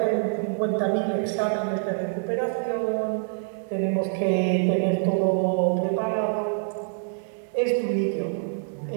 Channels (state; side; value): silent; left; digital silence